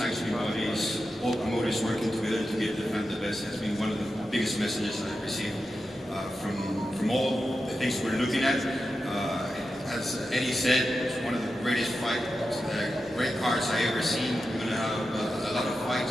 bodies, all promoters working together to give the fan the best. Has been one of the biggest messages I've received from all the things we're looking at. As Eddie said, it's one of the greatest fights, great cards I ever seen. We're going to have a lot of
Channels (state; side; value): normal; both; correlation 0.90